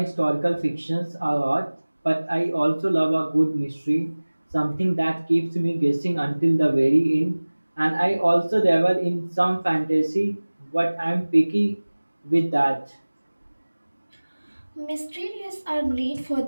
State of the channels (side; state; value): both; inverted; correlation -1.00